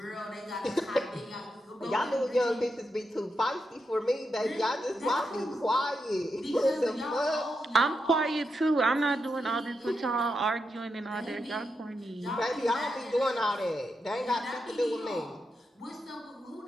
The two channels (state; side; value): normal; both; correlation 0.85